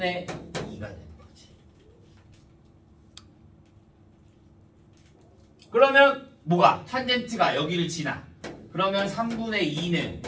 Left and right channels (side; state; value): both; identical; correlation 1.00